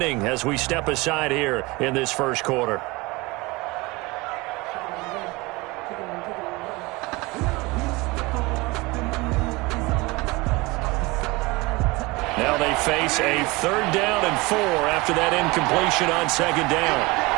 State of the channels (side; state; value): left; quieter; 23.4 dB